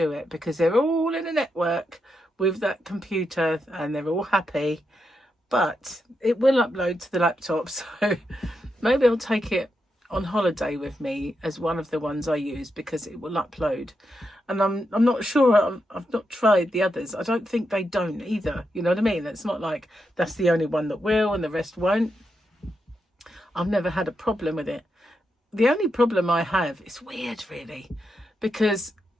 it, because they're all in a network with that computer and they're all happy. But it will upload to the laptop, so maybe I'll take it on holiday with me as one of the ones I use, because it will upload. And I'm not sure. I've not tried the others. I don't think they don't either. You know what I mean? It's not like that's the only one that will and the rest won't. I've never had a problem with it. The only problem I have is weird, really, because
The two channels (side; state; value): both; normal; correlation 0.84